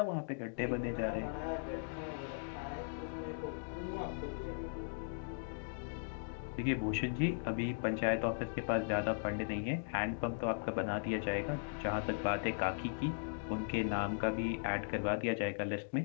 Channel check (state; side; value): silent; right; digital silence